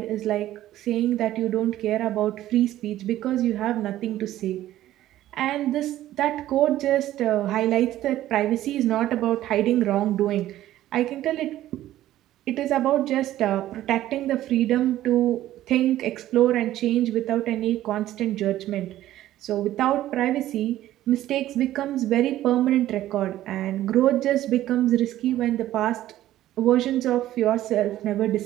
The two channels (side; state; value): left; quieter; 13.8 dB